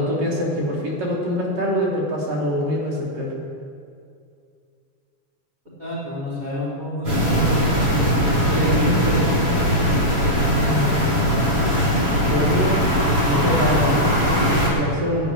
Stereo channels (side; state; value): left; late; 7.1 ms